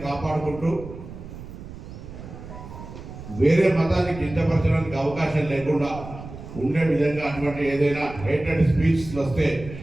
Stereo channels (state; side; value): noise; right; rumble, 13 dB below the sound